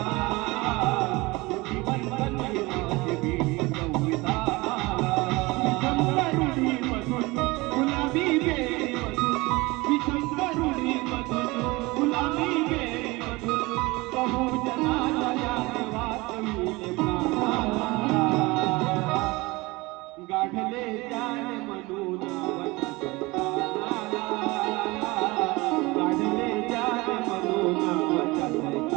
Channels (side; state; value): left; quieter; 22.9 dB